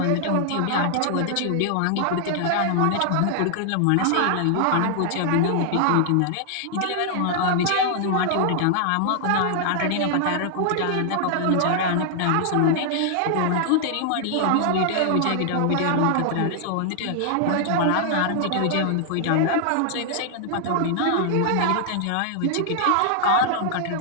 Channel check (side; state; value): both; different; correlation 0.00